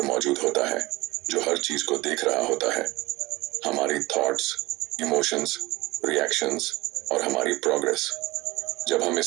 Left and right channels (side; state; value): left; quieter; 20.7 dB